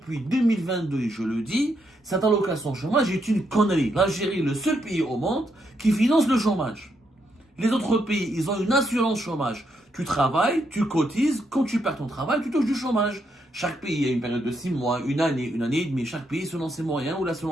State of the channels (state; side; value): normal; both; correlation 0.78